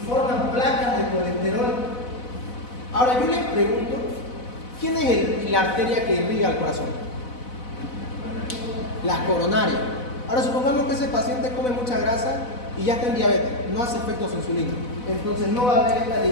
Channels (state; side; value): late; right; 4.0 ms